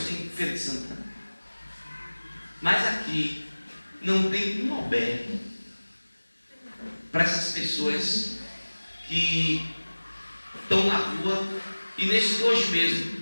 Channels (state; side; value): inverted; both; correlation -1.00